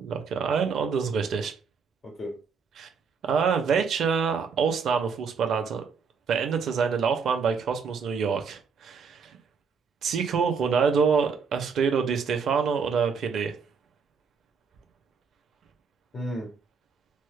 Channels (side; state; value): left; quieter; 5.7 dB